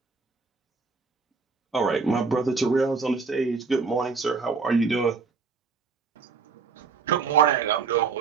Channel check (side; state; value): left; quieter; 4.9 dB